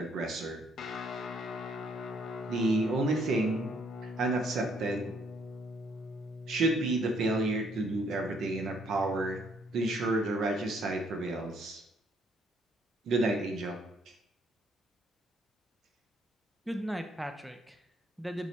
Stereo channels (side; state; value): both; normal; correlation 0.67